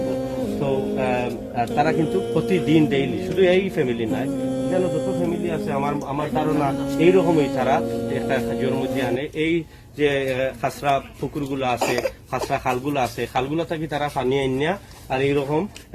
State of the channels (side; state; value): both; identical; correlation 1.00